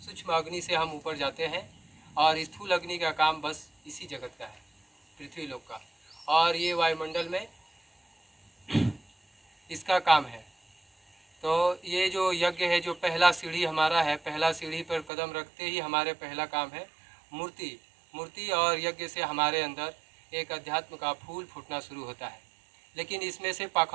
सूक्ष्म अग्नि से हम ऊपर जाते हैं और स्थूल अग्नि का काम बस इसी जगत का है, पृथ्वी लोक का, और ये वायुमंडल में इसका काम है। तो ये जो यज्ञ है, जो पहला सीढ़ी हमारा है, पहला सीढ़ी पर कदम रखते ही हमारे पहला काम है मूर्ति और यज्ञ से हमारे अंदर एक अध्यात्म का फूल फूटना शुरू होता है। लेकिन इसमें से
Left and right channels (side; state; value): left; drops out; at 15.1 s